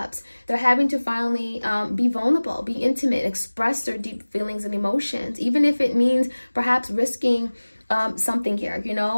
They're having to finally be vulnerable, be intimate, express their deep feelings and emotions, even if it means perhaps risking something here, you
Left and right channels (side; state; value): both; inverted; correlation -1.00